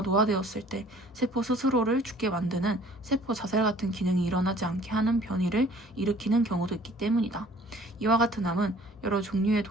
노화되었을 때 세포 스스로를 죽게 만드는 세포 자살 같은 기능이 일어나지 않게 하는 변이를 일으키는 경우도 있기 때문이다. 이와 같은 암은 여러 종류의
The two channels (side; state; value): both; normal; correlation 0.54